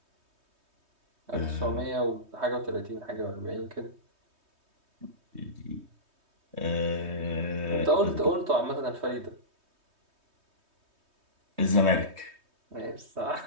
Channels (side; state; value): left; late; 3.2 ms